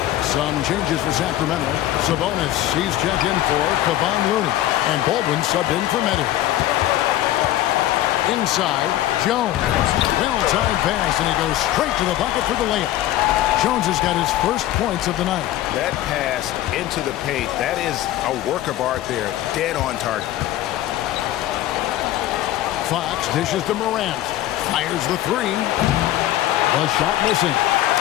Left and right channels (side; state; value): right; quieter; 13.9 dB